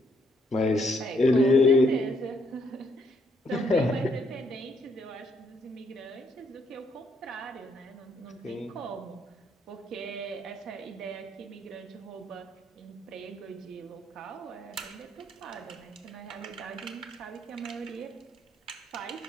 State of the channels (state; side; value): normal; both; correlation 0.72